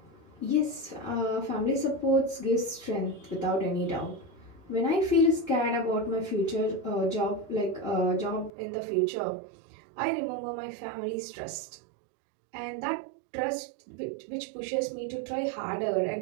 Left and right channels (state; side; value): drops out; left; at 8.5 s